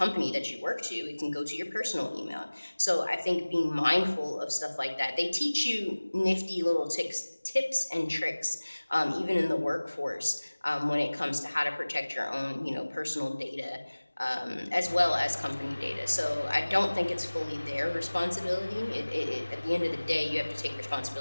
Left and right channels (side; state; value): both; inverted; correlation -1.00